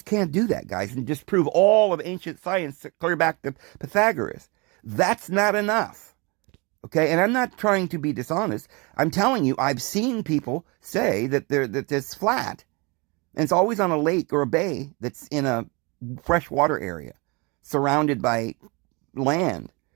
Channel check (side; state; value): left; quieter; 28.5 dB